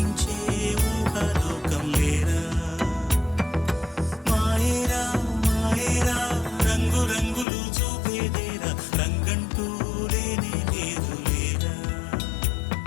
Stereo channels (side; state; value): right; drops out; at 7.5 s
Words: ఊహలోకం లేరా మాయేరా మాయేరా రంగు రంగులు చూపేదేరా రంగంటూ లేనే లేదు లేరా